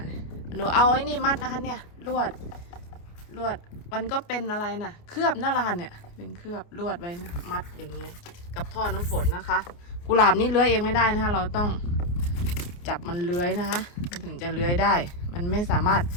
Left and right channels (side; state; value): right; late; 29 ms